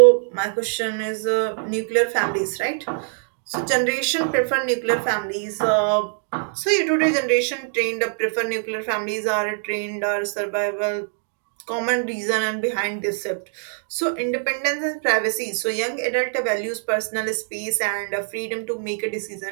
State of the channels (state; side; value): silent; left; 63 dB below the other